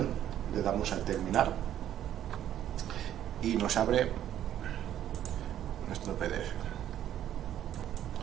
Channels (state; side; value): quieter; left; 11.2 dB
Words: le damos a terminar y nos abre nuestro PDF.